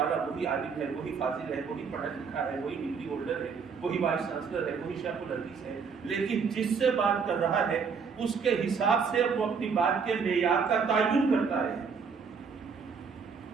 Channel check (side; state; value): left; quieter; 5.8 dB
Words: وہی عالم ہے، وہی فاضل ہے، وہی پڑھا لکھا ہے، وہی ڈگری ہولڈر ہے، وہی وائس چانسلر ہے، وہی شیخ الحدیث ہے، لیکن جس سے بات کر رہا ہے اس کے حساب سے وہ اپنی بات کے معیار کا تعین کرتا ہے۔